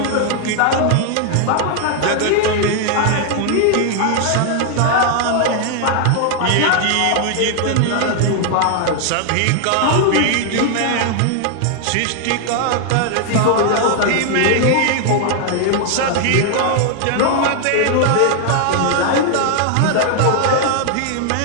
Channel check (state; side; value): different; both; correlation 0.00